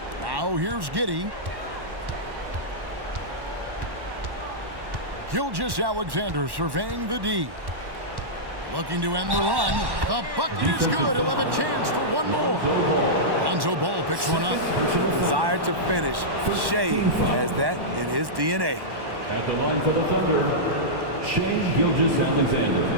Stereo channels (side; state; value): left; late; 1.1 ms